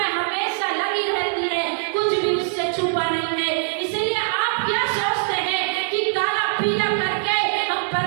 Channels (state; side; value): silent; left; digital silence